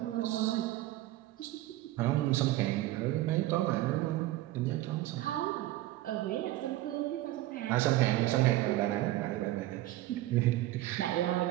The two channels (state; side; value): quieter; left; 16.1 dB